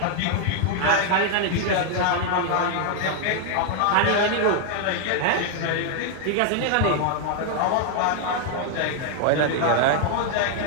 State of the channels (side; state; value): both; different; correlation 0.00